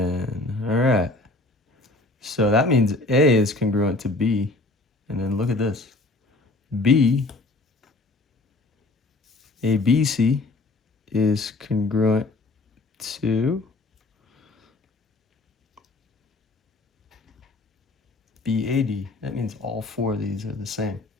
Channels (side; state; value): right; quieter; 3.1 dB